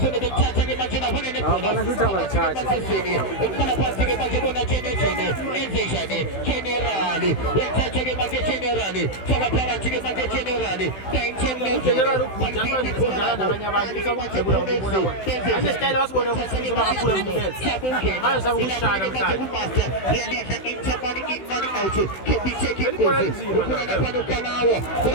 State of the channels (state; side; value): late; right; 16 ms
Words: to be imagine I wanted to put